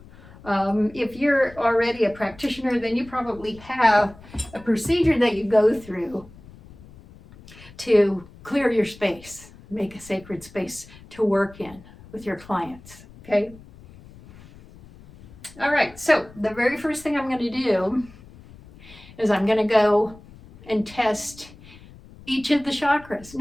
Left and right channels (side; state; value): left; noise; rumble, 21 dB below the sound